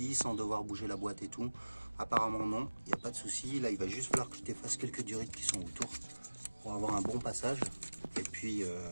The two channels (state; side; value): inverted; both; correlation -1.00